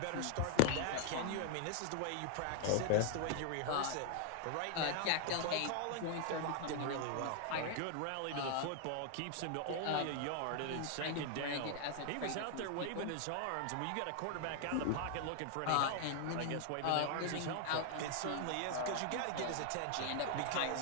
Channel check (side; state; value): both; different; correlation 0.00